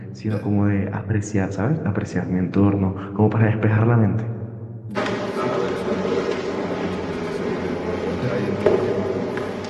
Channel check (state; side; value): identical; both; correlation 1.00